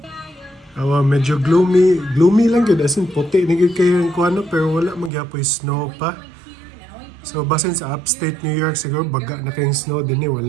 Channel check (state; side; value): drops out; left; at 5.1 s